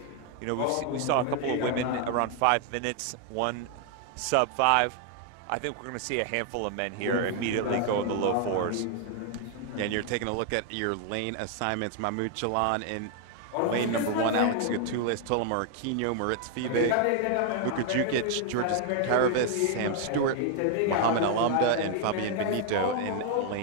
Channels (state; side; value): different; both; correlation 0.00